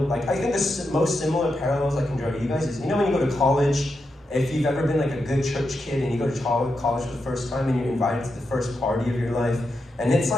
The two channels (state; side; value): normal; both; correlation 0.86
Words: I think the most similar parallels I can draw to you guys is, when you go to college, if you've ever been like a good church kid and you go to college for the first time and you're invited to the first party of your life, and it's